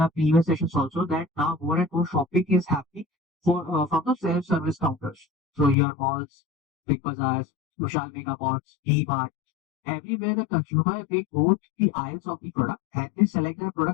previous sessions also, that now more and more shopping is happening from the self-service counters. So your malls, big bazaars, Vishal Mega Marts, D-Mart, everywhere the consumer they go to the aisles of the product and they select the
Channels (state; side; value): drops out; right; at 5.8 s